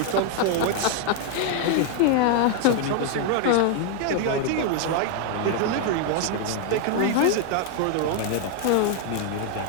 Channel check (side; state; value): both; different; correlation 0.00